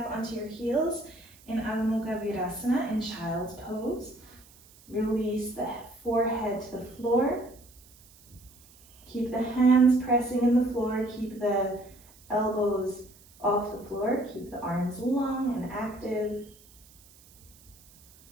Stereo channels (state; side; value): noise; right; hiss, 25 dB below the sound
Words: onto your heels in Adho Mukha Virasana in child's pose. Release the forehead to the floor. Keep the hands pressing in the floor. Keep the elbows off the floor. Keep the arms long and active.